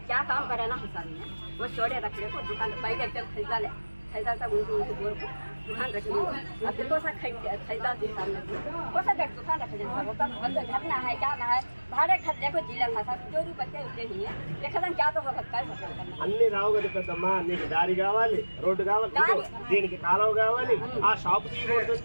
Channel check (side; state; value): both; inverted; correlation -1.00